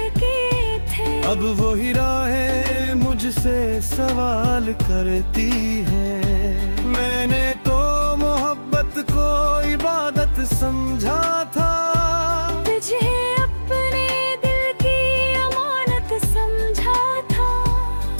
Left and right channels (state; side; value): inverted; both; correlation -1.00